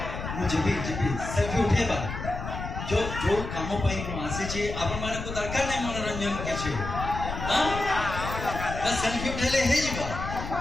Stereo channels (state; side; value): noise; left; rumble, 6 dB below the sound